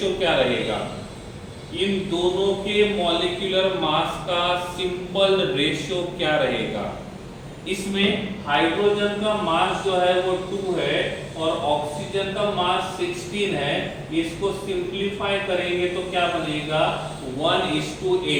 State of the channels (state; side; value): identical; both; correlation 1.00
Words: क्या रहेगा? इन दोनों के मॉलिक्यूलर मास का सिंपल रेशो क्या रहेगा? इसमें हाइड्रोजन का मास जो है वो 2 है और ऑक्सीजन का मास 16 है। इसको सिंपलीफाई करेंगे तो क्या बनेगा?